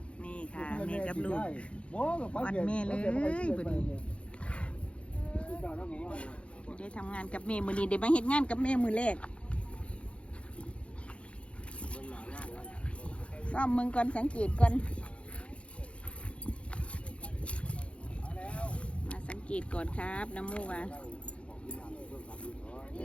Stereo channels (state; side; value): late; right; 0.060 ms